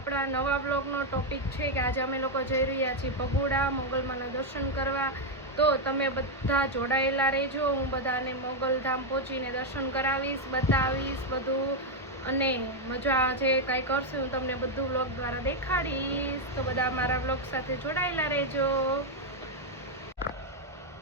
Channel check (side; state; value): both; normal; correlation 0.02